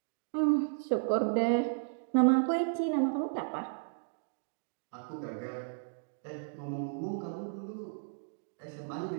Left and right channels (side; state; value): left; silent; digital silence